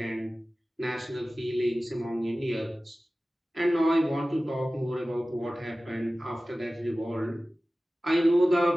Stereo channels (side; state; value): both; normal; correlation 0.96